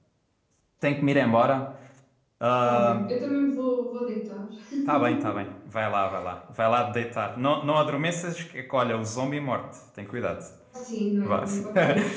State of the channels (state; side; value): identical; both; correlation 1.00